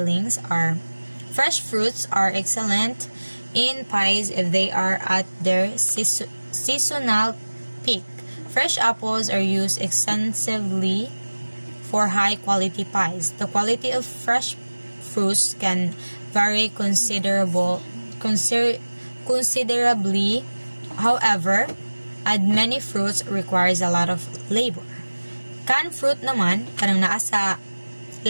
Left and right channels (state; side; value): inverted; both; correlation -1.00